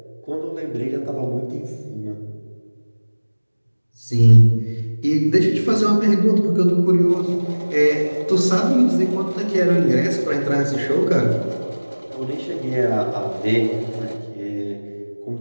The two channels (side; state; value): both; inverted; correlation -1.00